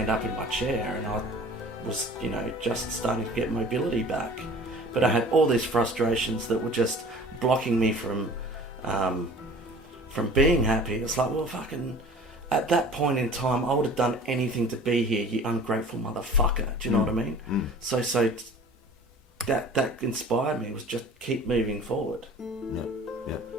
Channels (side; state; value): both; normal; correlation 0.45